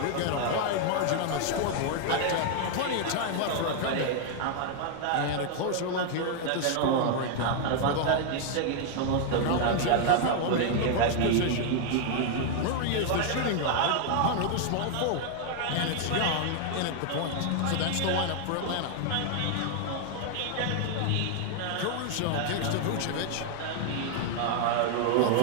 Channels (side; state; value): both; different; correlation 0.00